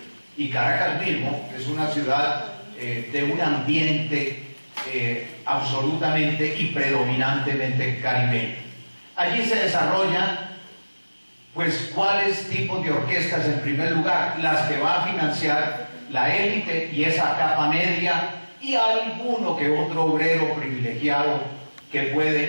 y Caracas mismo es una ciudad de un ambiente absolutamente y predominantemente caribeño. Allí se desarrollan, pues, ¿cuáles tipos de orquestas? En primer lugar, las que va a financiar la élite y esa capa media, y alguno que otro obrero privilegiado que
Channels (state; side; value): inverted; both; correlation -1.00